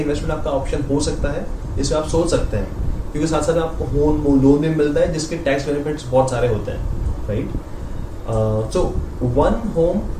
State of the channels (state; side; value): identical; both; correlation 1.00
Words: आपका ऑप्शन हो सकता है। इसमें आप सोच सकते हैं, क्योंकि साथ साथ आपको होम लोन भी मिलता है जिसके टैक्स बेनिफिट्स बहुत सारे होते हैं, right. So one home